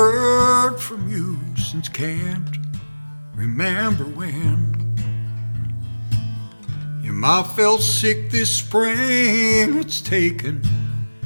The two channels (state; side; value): inverted; both; correlation -1.00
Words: from you since can't remember when. Your ma fell sick this spring. It's taken